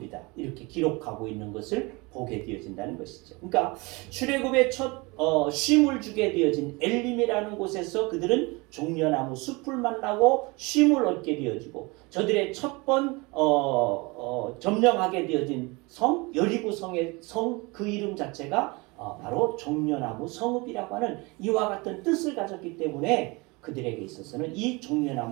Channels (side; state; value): left; quieter; 26.0 dB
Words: 이렇게 기록하고 있는 것을 보게 되어진다는 것이죠. 그러니까 출애굽의 첫 쉼을 주게 되어진 엘림이라는 곳에서 그들은 종려나무 숲을 만나고 쉼을 얻게 되어지고 저들의 첫 번 점령하게 되어진 성 여리고 성의 성 그 이름 자체가 바로 종려나무 성읍이라고 하는 이와 같은 뜻을 가졌기 때문에 그들에게 있어서는 이